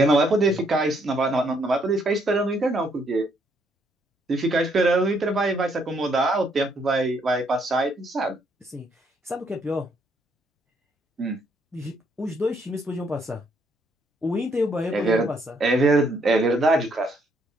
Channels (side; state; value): both; normal; correlation 0.71